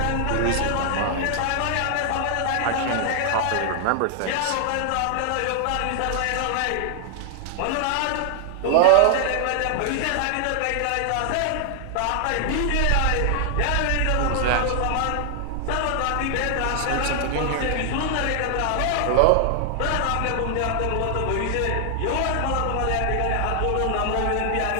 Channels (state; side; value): different; both; correlation 0.00